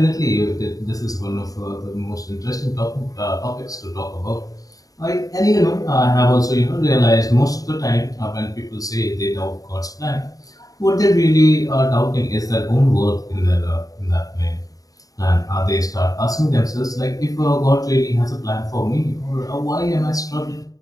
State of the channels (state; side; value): late; right; 0.17 ms